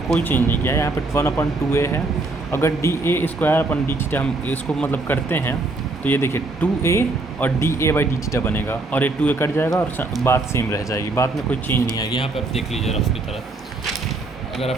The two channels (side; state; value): left; quieter; 3.2 dB